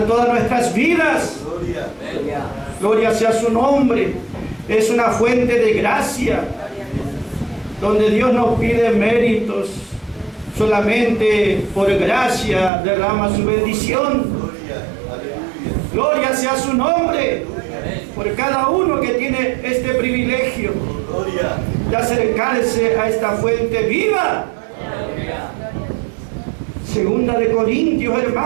todas nuestras vidas. Gloria sea su nombre. Es una fuente de gracia, donde Dios no pide méritos, solamente por gracia derrama su bendición. Gloria sea su nombre por cada uno que tiene este privilegio de acercarse a esta fuente viva. Segunda de Corintios,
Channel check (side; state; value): left; drops out; at 12.7 s